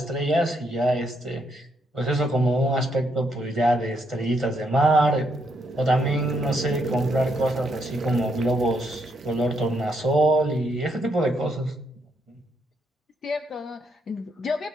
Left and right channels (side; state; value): both; normal; correlation 0.76